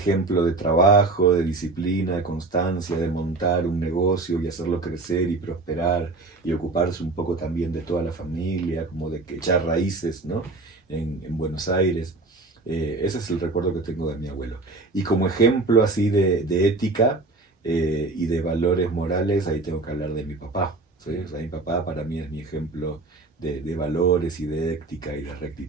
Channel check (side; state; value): left; quieter; 3.4 dB